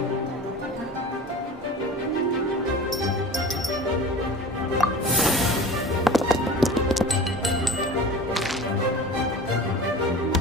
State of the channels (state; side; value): normal; both; correlation 0.38